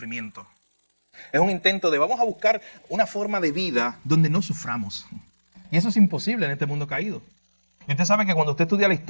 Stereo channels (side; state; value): both; inverted; correlation -1.00